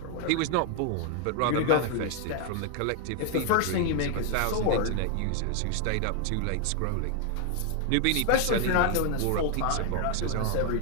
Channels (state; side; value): different; both; correlation 0.00